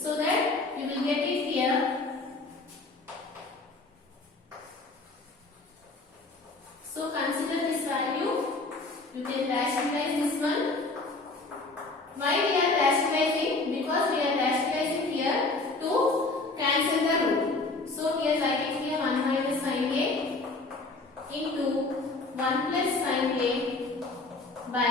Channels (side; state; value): right; quieter; 3.4 dB